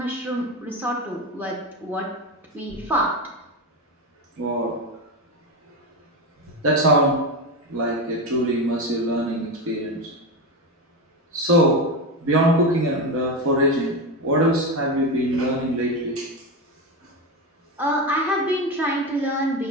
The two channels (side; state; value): both; normal; correlation 0.17